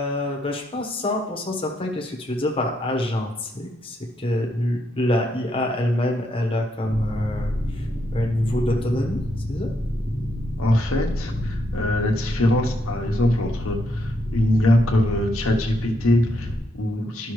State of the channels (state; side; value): normal; both; correlation 0.77